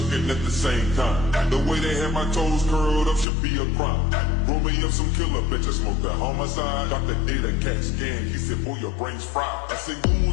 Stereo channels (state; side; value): drops out; right; at 3.2 s